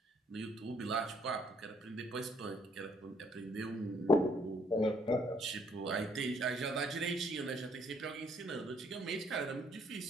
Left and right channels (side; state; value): both; normal; correlation 0.66